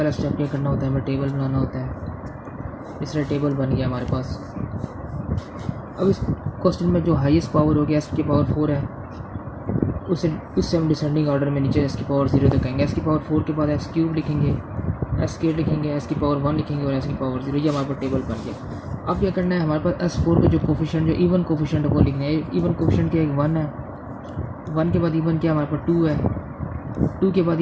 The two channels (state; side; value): identical; both; correlation 1.00